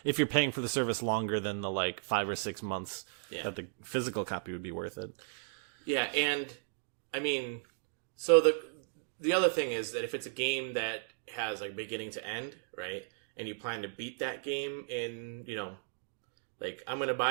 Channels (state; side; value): silent; left; digital silence